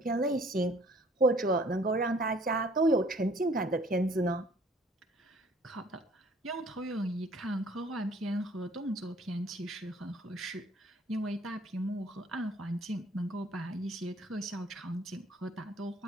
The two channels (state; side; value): normal; both; correlation 0.57